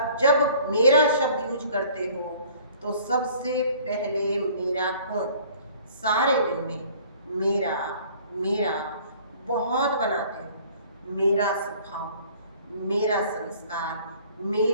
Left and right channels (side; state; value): both; inverted; correlation -0.53